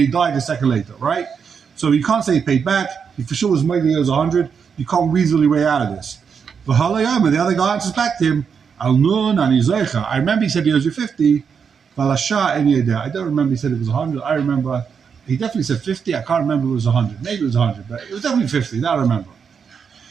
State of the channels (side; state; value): left; quieter; 6.5 dB